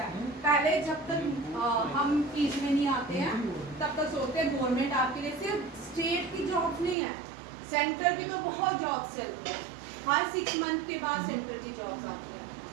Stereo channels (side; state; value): left; drops out; at 7.0 s